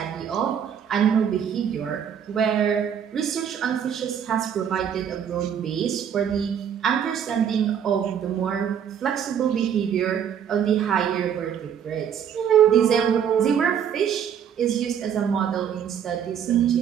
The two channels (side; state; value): left; quieter; 8.5 dB